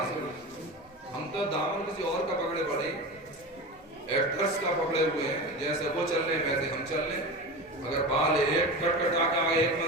سے؟ ہم تو دامن کسی اور کا پکڑے پڑے، ایکٹرس کا پکڑے ہوئے ہیں، جیسے وہ چل رہے ہیں ویسے ہم چل رہے ہیں۔ اگر بال ایک کٹ کٹا کے آگے ایک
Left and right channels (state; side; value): normal; both; correlation 0.27